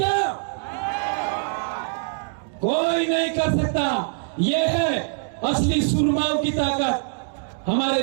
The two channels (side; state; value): left; silent; digital silence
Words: कोई नहीं कर सकता। यह है असली सुरमाओं की ताकत। हमारे